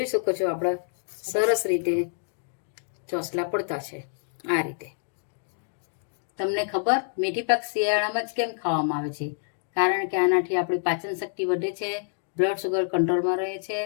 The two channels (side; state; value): right; silent; digital silence